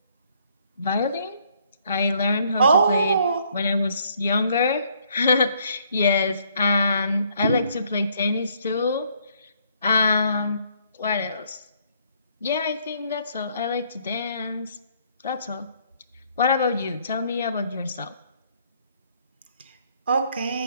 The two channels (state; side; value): inverted; both; correlation -0.66